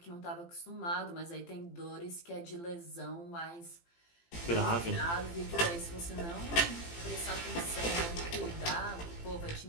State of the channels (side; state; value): right; late; 18 ms